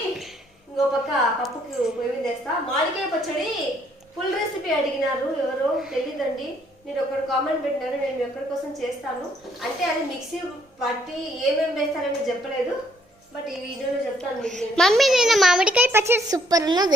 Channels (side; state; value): both; normal; correlation 0.67